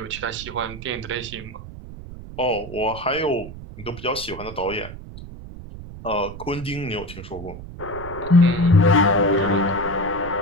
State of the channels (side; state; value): right; noise; rumble, 13 dB below the sound